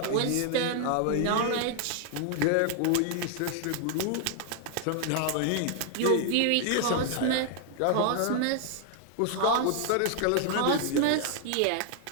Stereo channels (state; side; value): different; both; correlation 0.00